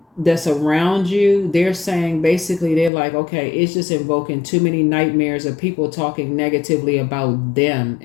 that's around you. They're saying basically they're like, okay, it's just invoking too many nightmares of people talking negatively about them,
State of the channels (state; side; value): drops out; right; at 2.9 s